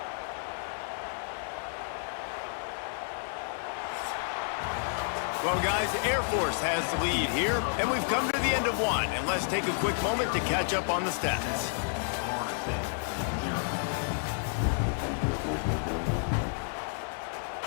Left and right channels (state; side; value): silent; right; digital silence